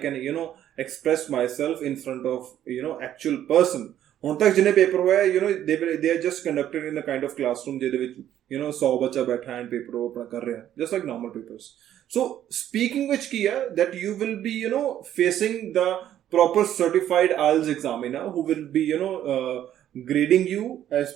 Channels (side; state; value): left; quieter; 11.3 dB